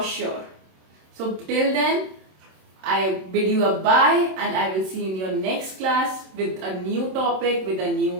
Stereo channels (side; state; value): left; late; 27 ms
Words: sure. So till then, I bid you a bye, and I will see you in your next class with a new topic, with a